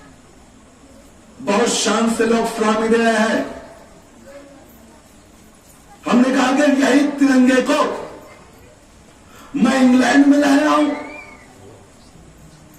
بہت شان سے لوگ سلامی دے رہے ہیں. ہم نے کہا کہ یہی ترنگے کو میں انگلینڈ میں لہراؤں,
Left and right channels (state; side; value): identical; both; correlation 1.00